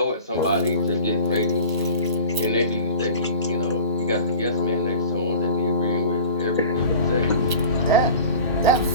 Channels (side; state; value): both; inverted; correlation -0.40